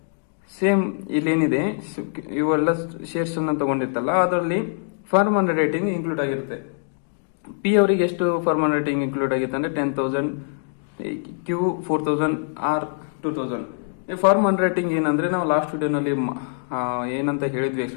ಸೇಮ್ ಇಲ್ಲೇನಿದೆ, ಇವೆಲ್ಲ ಶೇರ್ಸ್ ಅನ್ನ ತಗೊಂಡಿರ್ತಲ್ಲ, ಅದರಲ್ಲಿ ಫಾರ್ಮನ್ ರೇಟಿಂಗ್ ಇನ್ಕ್ಲೂಡ್ ಆಗಿರುತ್ತೆ. ಪಿ ಅವರಿಗೆ ಎಷ್ಟು ಫಾರ್ಮನ್ ರೇಟಿಂಗ್ ಇನ್ಕ್ಲೂಡ್ ಆಗಿತ್ತು ಅಂದ್ರೆ 10,000, Q 4,000, R 2,000. ಈ ಫಾರ್ಮನ್ ರೇಟಿಂಗ್ ಏನಂದ್ರೆ, ನಾವು ಲಾಸ್ಟ್ ವಿಡಿಯೋನಲ್ಲಿ ಏನಂತ ಹೇಳಿದ್ವಿ,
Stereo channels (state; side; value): silent; right; digital silence